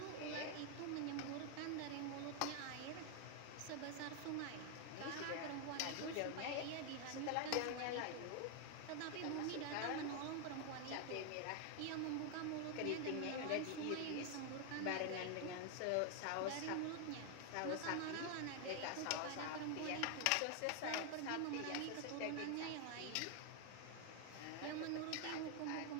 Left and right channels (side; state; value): both; different; correlation 0.00